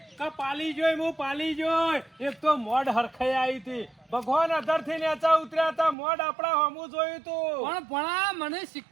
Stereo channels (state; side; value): drops out; left; at 6.0 s